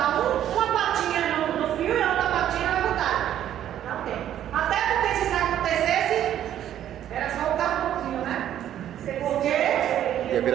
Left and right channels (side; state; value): left; quieter; 11.1 dB